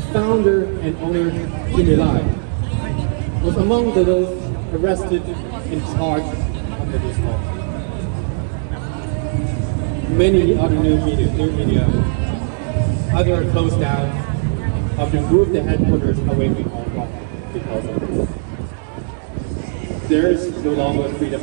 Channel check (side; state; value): left; silent; digital silence